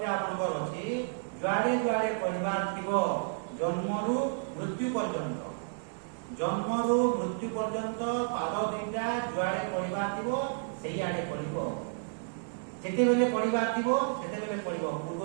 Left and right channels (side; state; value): left; silent; digital silence